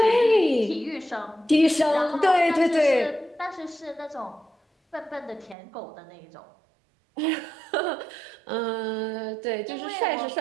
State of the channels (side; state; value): left; drops out; at 5.6 s